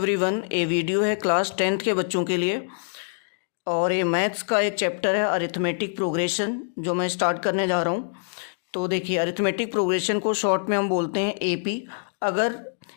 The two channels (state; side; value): silent; right; digital silence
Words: ये वीडियो है क्लास 10th के बच्चों के लिए और ये मैथ्स का एक चैप्टर है अरिथमेटिक प्रोग्रेशन जो मैं स्टार्ट करने जा रहा हूँ। तो देखिए, अरिथमेटिक प्रोग्रेशन को शॉर्ट में हम बोलते हैं एपी। अगर